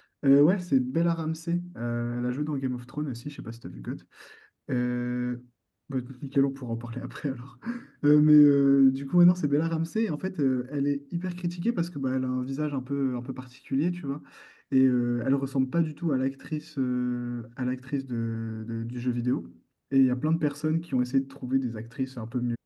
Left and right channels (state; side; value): identical; both; correlation 1.00